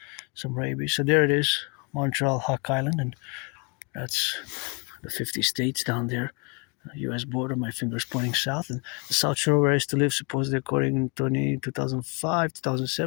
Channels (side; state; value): right; quieter; 31.6 dB